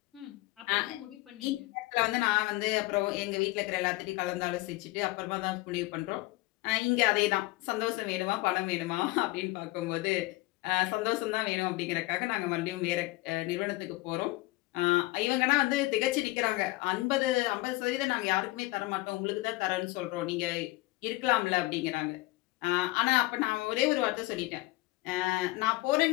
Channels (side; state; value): right; quieter; 20.6 dB